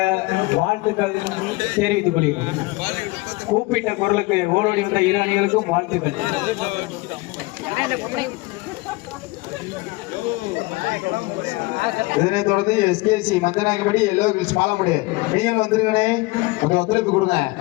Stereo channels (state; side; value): quieter; right; 22.6 dB